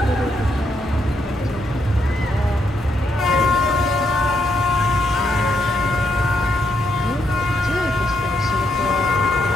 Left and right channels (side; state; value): both; normal; correlation 0.78